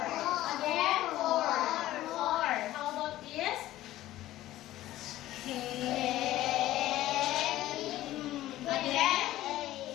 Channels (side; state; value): right; quieter; 15.0 dB